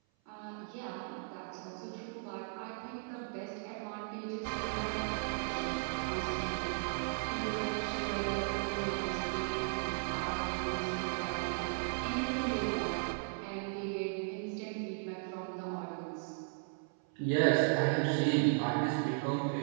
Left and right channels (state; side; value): silent; left; 54 dB below the other